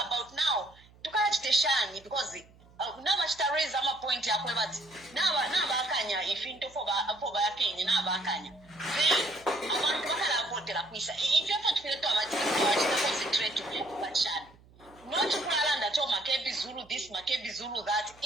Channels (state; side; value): noise; right; hum, 26 dB below the sound